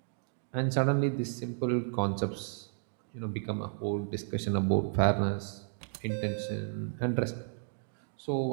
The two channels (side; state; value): left; silent; digital silence